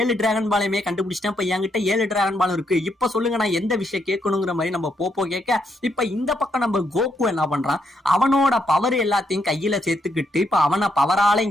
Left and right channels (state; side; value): normal; both; correlation 0.77